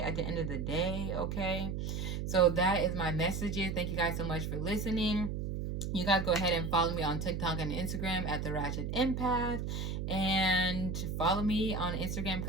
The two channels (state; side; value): noise; right; hum, 3 dB below the sound